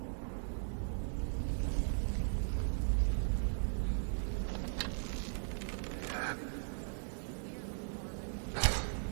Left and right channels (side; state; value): left; silent; digital silence